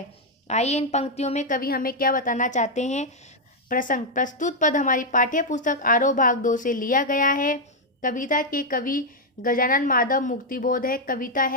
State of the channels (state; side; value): normal; both; correlation -0.01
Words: आइए इन पंक्तियों में कवि हमें क्या बताना चाहते हैं। प्रसंग। प्रस्तुत पद हमारी पाठ्य पुस्तक आरोह भाग 2 से लिया गया है। कविता के कवि गजानन माधव मुक्तिबोध है, कविता